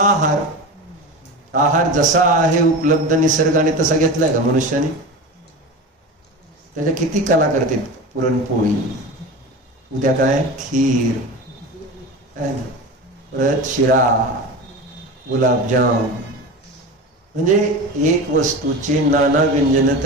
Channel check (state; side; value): normal; both; correlation 0.28